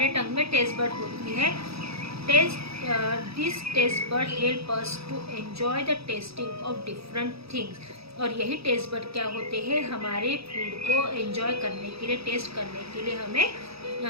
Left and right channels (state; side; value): late; left; 0.77 ms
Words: टंग में टेस्ट बर्ड होती है। This taste bud help us to enjoy the tasting of different things. और यही टेस्ट बर्ड क्या होते हैं, हमारे फूड को एंजॉय करने के लिए, टेस्ट करने के लिए हमें